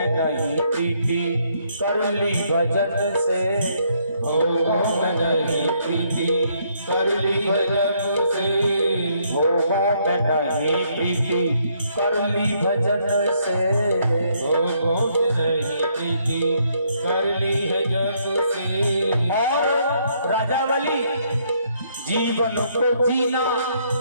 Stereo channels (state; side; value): inverted; both; correlation -0.70